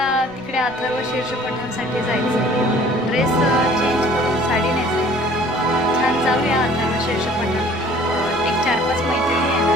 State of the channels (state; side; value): noise; left; rumble, 27 dB below the sound